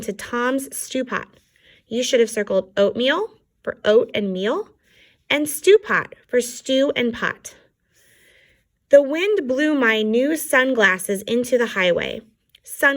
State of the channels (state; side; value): identical; both; correlation 1.00